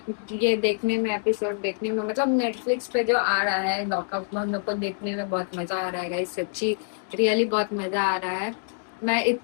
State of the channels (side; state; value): right; silent; digital silence